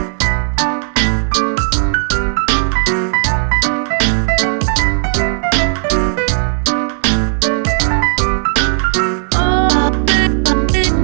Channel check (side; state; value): left; silent; 60 dB below the other